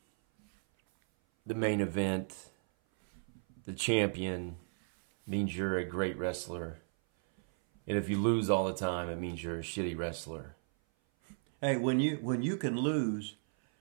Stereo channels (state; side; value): silent; left; 55 dB below the other